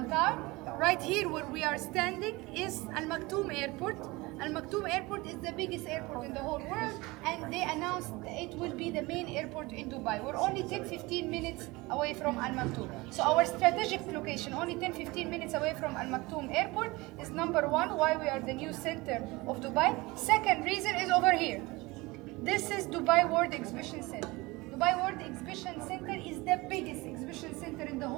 Right here where we are standing is Al Maktoum Airport. Al Maktoum Airport is the biggest airport in the whole world, and they announced it will be the main airport in Dubai. We're only 10-15 minutes away from Al Maktoum. So our strategic location, only 10-15 minutes away from Al Maktoum Airport, is number 1, why we are the new center of Dubai. Second reason is over here. This is Dubai World Exhibition Center. Dubai World Exhibition Center is the biggest exhibition center in the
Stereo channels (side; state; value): left; quieter; 22.7 dB